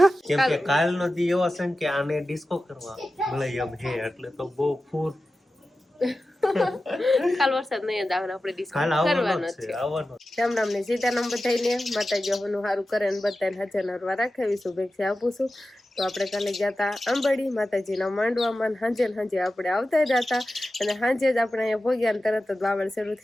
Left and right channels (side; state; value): both; normal; correlation 0.94